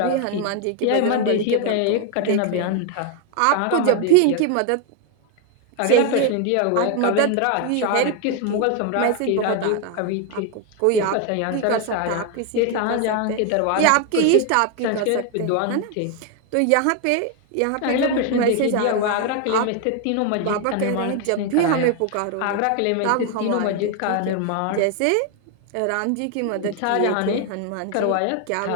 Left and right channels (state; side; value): different; both; correlation 0.01